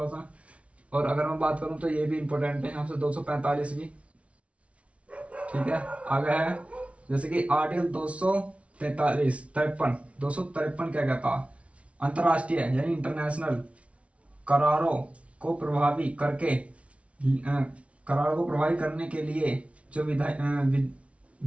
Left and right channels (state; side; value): late; left; 0.063 ms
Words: सा। और अगर मैं बात करूं तो ये भी इंपॉर्टेंट है, यहाँ से 245 भी, ठीक है। आगे है जैसे कि आर्टिकल 253 क्या कहता, अंतरराष्ट्रीय यानी इंटरनेशनल करारों को प्रभावी करने के लिए जो